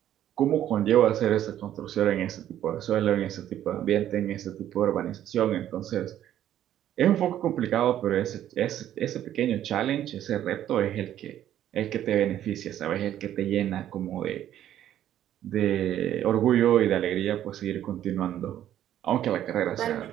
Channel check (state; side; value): quieter; left; 11.5 dB